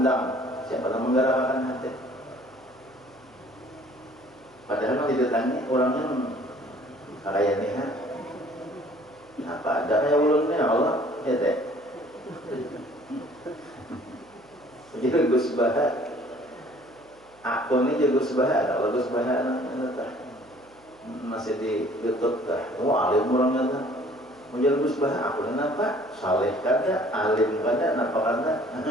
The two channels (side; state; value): right; noise; hum, 30 dB below the sound